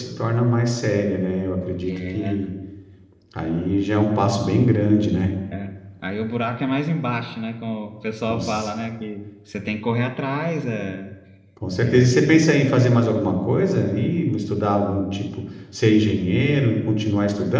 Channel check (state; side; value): identical; both; correlation 1.00